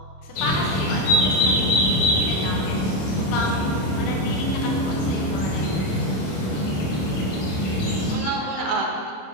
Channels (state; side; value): late; right; 27 ms